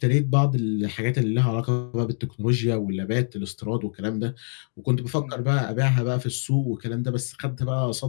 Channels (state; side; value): silent; right; digital silence